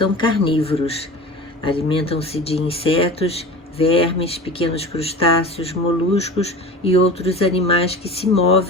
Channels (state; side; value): normal; both; correlation 0.35